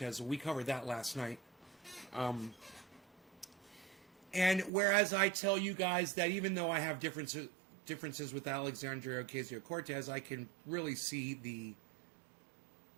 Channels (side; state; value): left; drops out; at 4.7 s